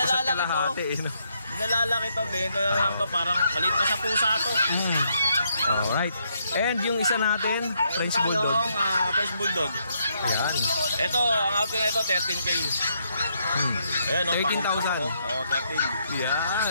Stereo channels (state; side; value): inverted; both; correlation -0.75